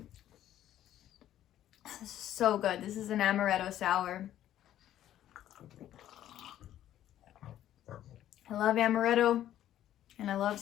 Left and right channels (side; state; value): right; quieter; 12.1 dB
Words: This is so good. This is an amaretto sour. I love amaretto and I love